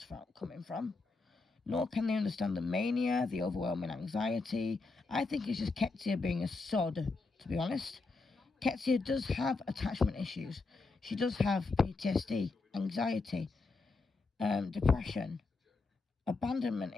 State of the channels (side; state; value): right; quieter; 3.8 dB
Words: coming from, nor can they understand the mania, the overwhelming anxiety. I think it's just Ketsia being a sod, to be honest. Ketsia does have attachment issues. She does have PTSD, anxiety, depression, abandonment